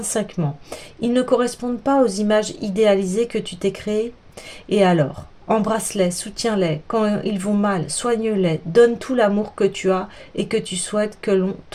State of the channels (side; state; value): both; identical; correlation 1.00